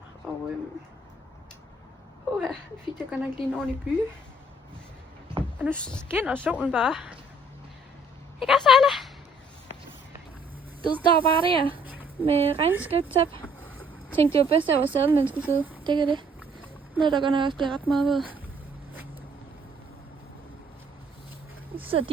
og jeg fik jeg godt nok lige en ordentlig by. Og nu skinner solen bare. Ikke også, Ejla? Det står bare der med regnskabstab. Tænkte det var bedst, at jeg var sadlen, man skulle sidde. Det kan det. Noget, der godt nok også bliver ret meget ved. Så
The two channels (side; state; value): both; normal; correlation 0.61